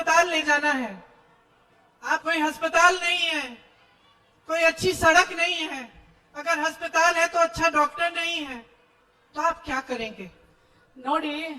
ले जाना है, आप कोई अस्पताल नहीं है, कोई अच्छी सड़क नहीं है, अगर अस्पताल है तो अच्छा डॉक्टर नहीं है, तो आप क्या करेंगे? ನೋಡಿ,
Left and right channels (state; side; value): identical; both; correlation 1.00